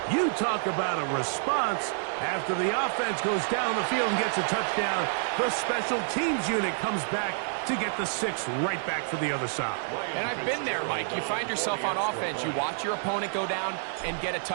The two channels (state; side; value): silent; left; digital silence